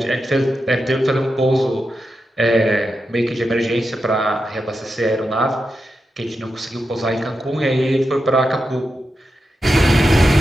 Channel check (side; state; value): both; normal; correlation 0.88